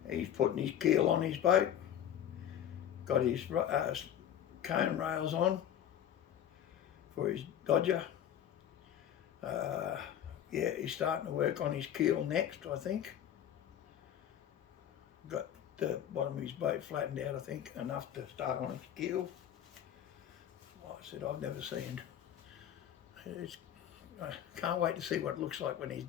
He's putting his keel on his boat, got his cone rails on for his Dodger. Yeah, he's starting to work on his keel next, I think. Got the bottom of his boat flattened out, I think, enough to start on its keel. Like I said, I've never seen. I can't wait to see what it looks like when he's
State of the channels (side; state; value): right; quieter; 10.2 dB